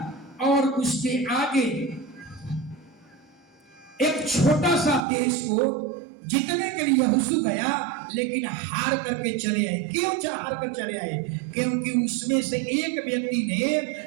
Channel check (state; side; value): drops out; left; at 5.1 s